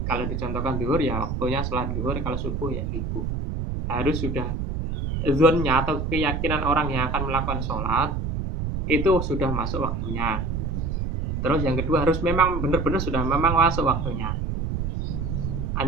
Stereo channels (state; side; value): noise; right; rumble, 2 dB below the sound